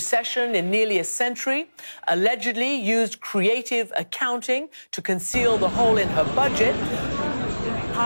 in nearly a century, allegedly used creative accounting to conceal the hole in her budget,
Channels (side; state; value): both; inverted; correlation -1.00